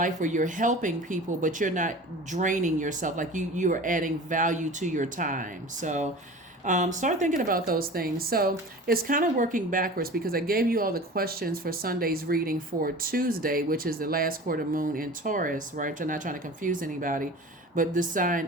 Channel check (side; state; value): both; normal; correlation 0.38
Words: where you're helping people but you're not draining yourself, like you are adding value to your time. So start thinking about those things. So it's kind of working backwards because I gave you all the questions for Sunday's reading for Tuesday, which is the last quarter moon in Taurus, right? I'm not trying to confuse anybody, but the